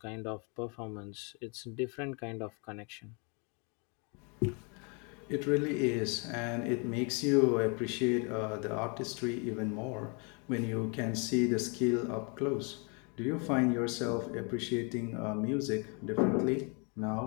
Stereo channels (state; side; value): quieter; right; 34.3 dB